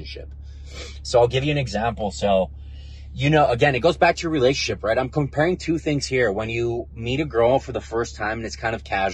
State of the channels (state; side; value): identical; both; correlation 1.00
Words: So I'll give you an example. So, again, it goes back to your relationship, right? I'm comparing two things here. When you meet a girl for the first time and it's kind of